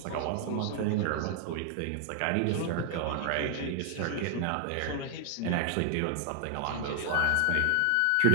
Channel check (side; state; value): both; different; correlation 0.00